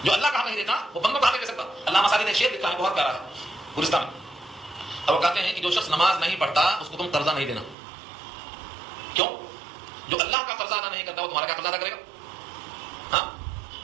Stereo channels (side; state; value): left; drops out; at 7.8 s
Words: جو اللہ کا حق نہیں دیتا وہ بندوں کا حق نہیں دے سکتا. علامہ سعدی نے شعر لکھا ہے بہت پیارا ہے گلستان میں، اور وہ کہتے ہیں کہ جو شخص نماز نہیں پڑھتا اس کو تم قرضہ نہیں دینا. کیوں؟ جو اللہ کا قرضہ ادا نہیں کرتا وہ تمہارا کیا قرضہ ادا کرے گا؟ ہاں